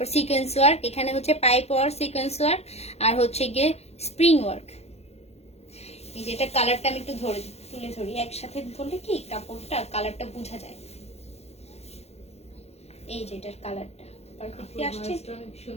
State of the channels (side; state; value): right; late; 0.31 ms